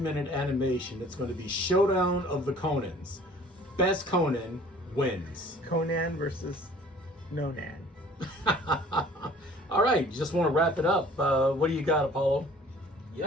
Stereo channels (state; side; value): normal; both; correlation 0.51